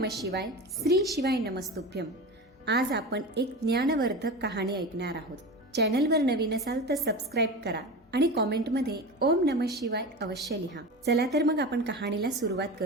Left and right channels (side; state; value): both; normal; correlation 0.28